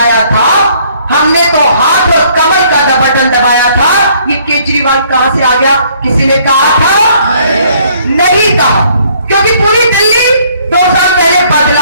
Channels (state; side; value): inverted; both; correlation -0.63